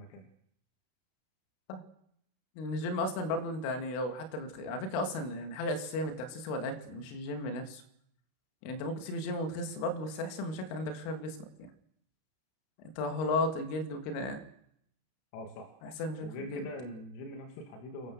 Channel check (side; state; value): right; late; 32 ms